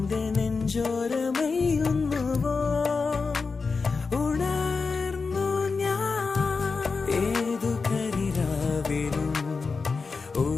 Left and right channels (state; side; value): quieter; right; 4.6 dB